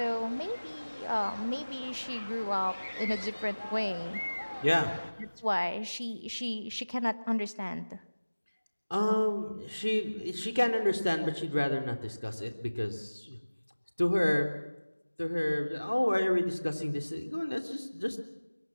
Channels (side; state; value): both; inverted; correlation -1.00